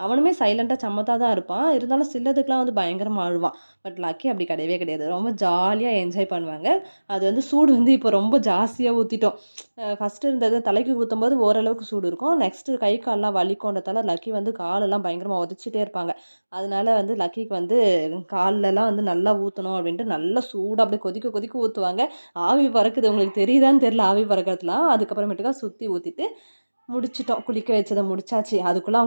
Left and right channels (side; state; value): both; inverted; correlation -1.00